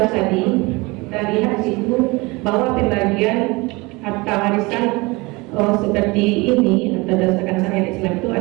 tadi, terlihat di situ bahwa pembagian harta warisan seperti ini atau berdasarkan syariat Islam itu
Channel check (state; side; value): quieter; left; 24.3 dB